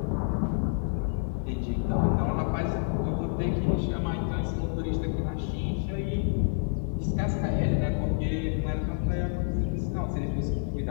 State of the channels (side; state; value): right; silent; 59 dB below the other